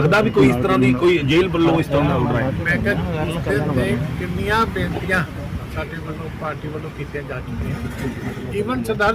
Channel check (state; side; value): identical; both; correlation 1.00